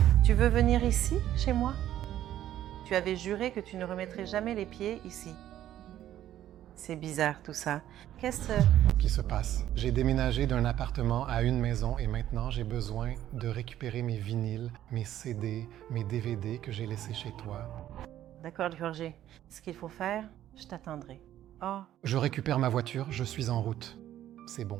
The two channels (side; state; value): left; quieter; 12.3 dB